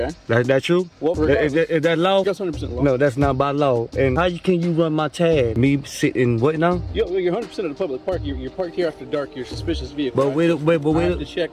That true? Well, Is that law? That's 100% law. No, that's not by law. And how can you run my tag? Me sitting what now? You're 100% in a public park. You're parked here after dark. You're a suspicious vehicle. But wait.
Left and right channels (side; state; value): both; identical; correlation 1.00